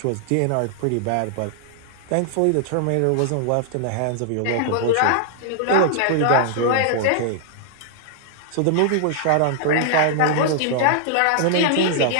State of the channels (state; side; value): different; both; correlation -0.01